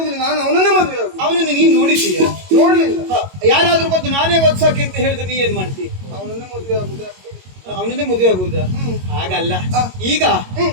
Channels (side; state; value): left; late; 22 ms